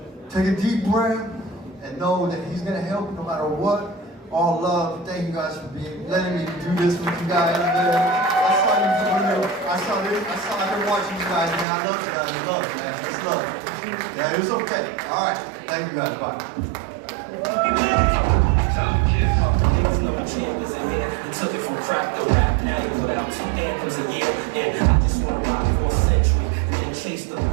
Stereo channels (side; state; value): left; drops out; at 11.7 s